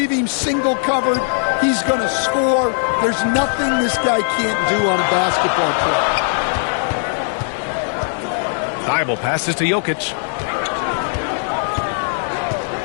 him single covered, he's going to score. There's nothing this guy can't do on a basketball court. Thibault passes to Jokic.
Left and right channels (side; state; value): right; silent; 62 dB below the other